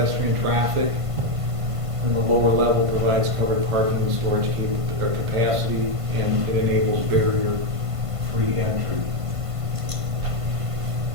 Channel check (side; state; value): left; late; 1.5 ms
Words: traffic, and the lower level provides covered parking and storage capacity, and it enables barrier-free entry.